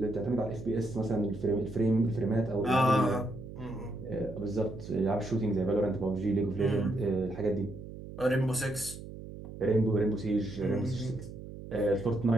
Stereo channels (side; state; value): right; noise; hum, 12 dB below the sound